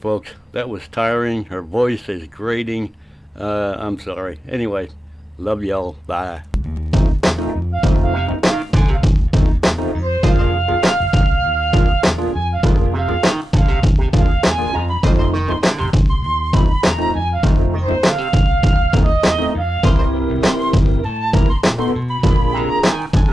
That was tiring. Her voice is grating. I'm sorry. Anyway, love y'all. Bye.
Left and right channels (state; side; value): normal; both; correlation 0.92